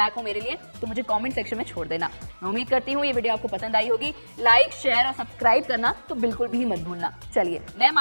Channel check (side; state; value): both; inverted; correlation -1.00